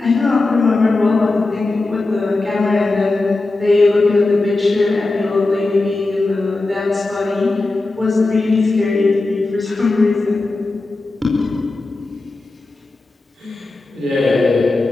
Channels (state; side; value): quieter; right; 3.2 dB